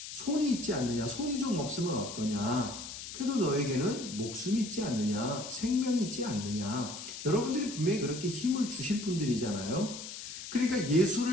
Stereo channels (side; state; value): left; noise; hiss, 10 dB below the sound